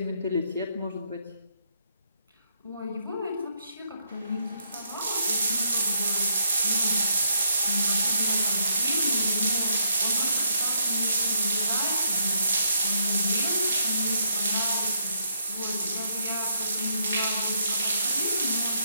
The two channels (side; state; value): both; inverted; correlation -0.73